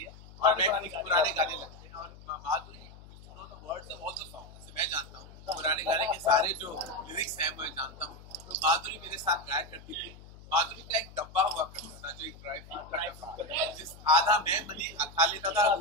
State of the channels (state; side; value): noise; left; hum, 19 dB below the sound